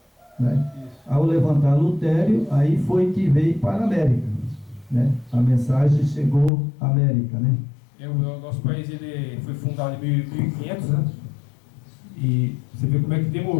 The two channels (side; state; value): right; drops out; at 6.5 s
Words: né? Ao levantar Lutério, aí foi que veio para a América, né? A mensagem chegou à América, né? O nosso país ele foi fundado em 1500, né? E você vê como é que